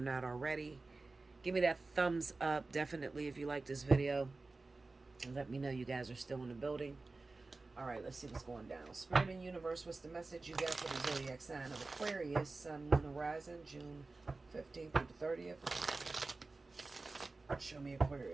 already. Give me that thumbs up, definitely, if you like this video. And let me know you guys are still in the building. Alright, let's see what's going down. Spirit and Universe, what's the message you got for the zodiac sign of Aquarius, Sun, Moon, Horizon, June 15th through the 30th? Show me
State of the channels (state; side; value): quieter; left; 3.5 dB